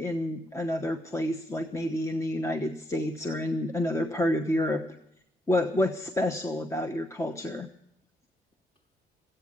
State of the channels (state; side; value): normal; both; correlation 0.77